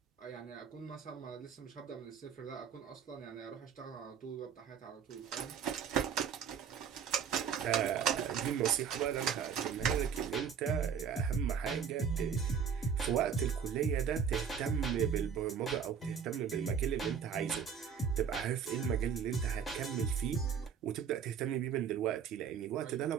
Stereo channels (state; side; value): quieter; left; 7.3 dB